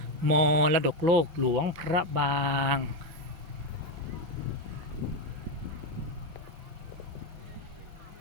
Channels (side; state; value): left; late; 6.1 ms